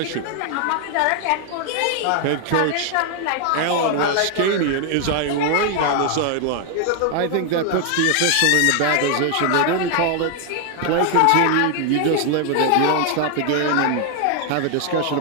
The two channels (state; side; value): different; both; correlation 0.00